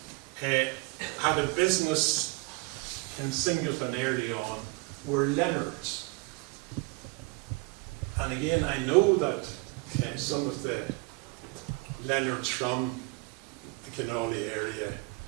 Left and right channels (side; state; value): left; quieter; 26.6 dB